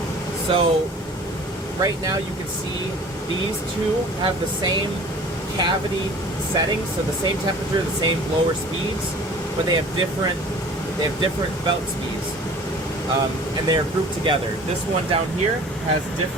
So right now you can see these two have the same cavity settings, so the same temperature, the same blower speeds, but they have different belt speeds, and they are grouped together. This one down here has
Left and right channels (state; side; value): normal; both; correlation 0.46